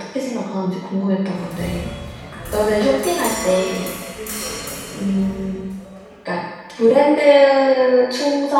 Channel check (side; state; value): both; identical; correlation 1.00